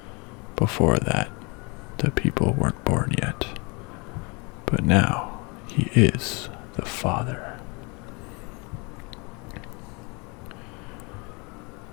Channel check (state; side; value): quieter; right; 29.9 dB